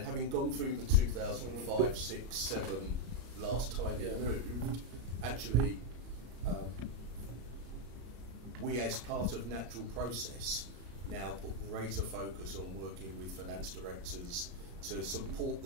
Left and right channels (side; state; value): left; late; 34 ms